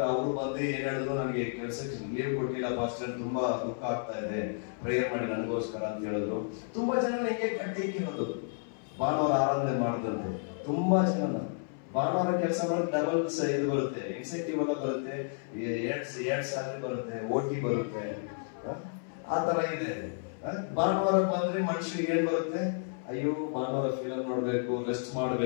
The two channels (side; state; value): right; silent; 57 dB below the other